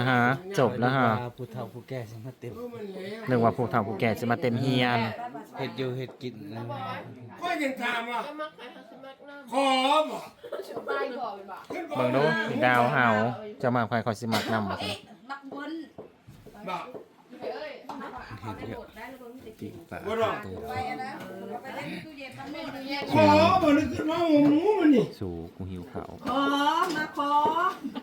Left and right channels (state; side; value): identical; both; correlation 1.00